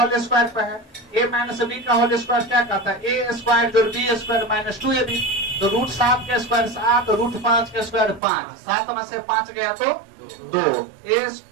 स्क्वायर पे है। a माइनस बी का होल स्क्वायर क्या कहता है? a स्क्वायर जो b स्क्वायर माइनस 2ab। तो √7 के स्क्वायर 7, √5 के स्क्वायर 5। 7 में से 5 गया तो 2।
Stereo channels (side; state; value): left; drops out; at 8.2 s